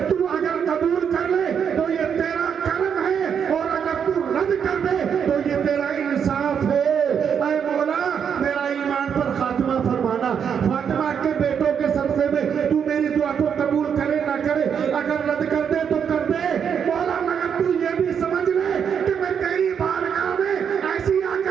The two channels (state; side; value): quieter; left; 7.5 dB